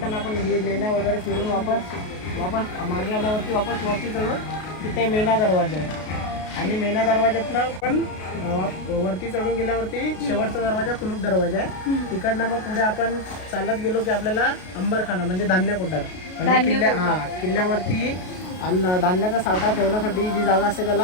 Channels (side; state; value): right; late; 33 ms